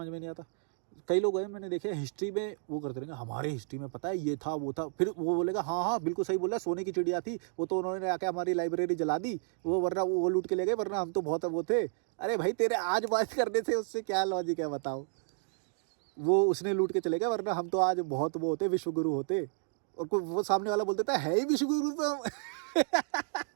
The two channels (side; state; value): left; silent; digital silence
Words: में नहीं आता, कई लोग हैं मैंने देखे हिस्ट्री में वो करते रहेंगे, हमारे हिस्ट्री में पता है ये था वो था, फिर वो बोलेगा हाँ हाँ बिल्कुल सही बोला, सोने की चिड़िया थी वो, तो उन्होंने आके हमारी लाइब्रेरी जला दी, वो वरना वो लूट के ले गए, वरना हम तो बहुत वो थे। अरे भाई तेरे आज बात करने से उससे क्या लॉजिक है बताओ? वो उसने लूट के चले गए, वरना हम तो आज बहुत वो होते, विश्वगुरु होते। और कोई वो सामने वाला बोल देता है ही विश्वगुरु तो हम।